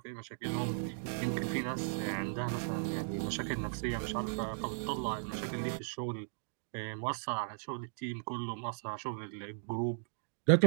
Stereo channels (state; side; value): silent; left; digital silence